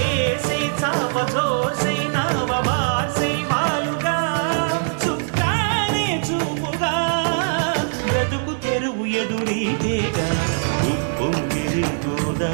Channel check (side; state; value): left; silent; digital silence